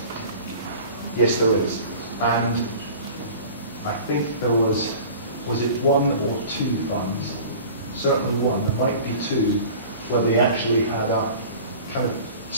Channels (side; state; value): both; inverted; correlation -0.41